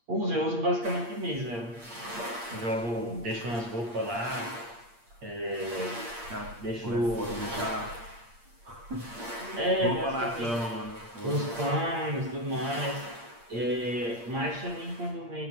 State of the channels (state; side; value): late; left; 8.6 ms